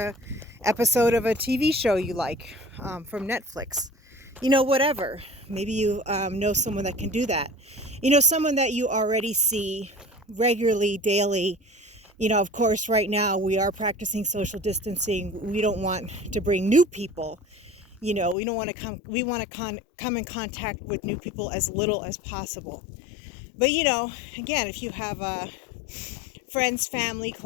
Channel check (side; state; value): right; drops out; at 18.4 s